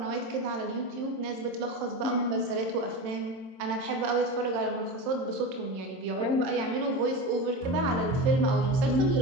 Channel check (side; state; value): left; late; 22 ms